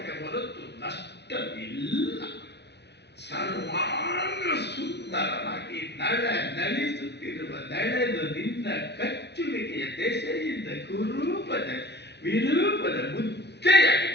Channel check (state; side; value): late; right; 0.50 ms